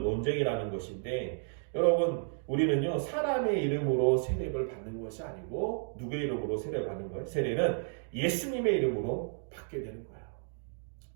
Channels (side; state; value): left; silent; digital silence